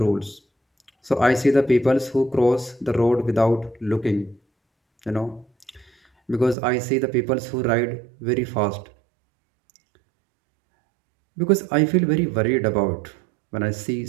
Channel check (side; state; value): left; drops out; at 6.6 s